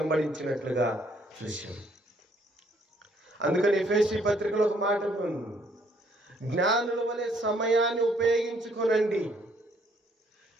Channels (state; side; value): normal; both; correlation 0.66